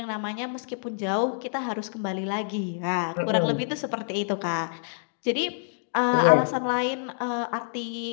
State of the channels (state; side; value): silent; right; digital silence